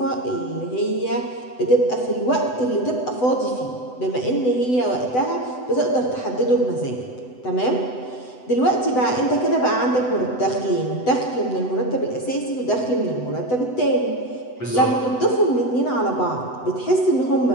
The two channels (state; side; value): late; right; 8.0 ms